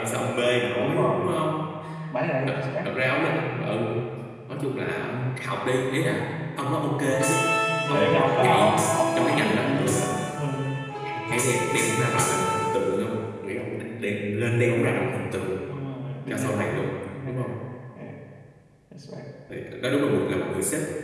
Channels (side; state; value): both; identical; correlation 1.00